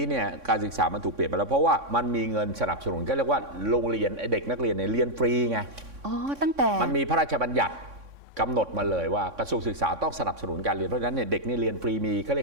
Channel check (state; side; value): late; left; 3.6 ms